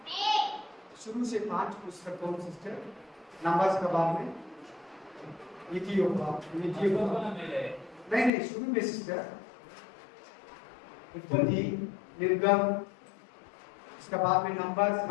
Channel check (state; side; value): drops out; right; at 8.3 s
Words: शुरू से 5 पुस्तक कौन सिस्टर? नंबर्स का बाद में ಒಬ್ಬನ ಮೇಲೆ नहीं शुरू में सिस्टर उत्पत्ति, निर्गम, इसका बाद में नंबर्स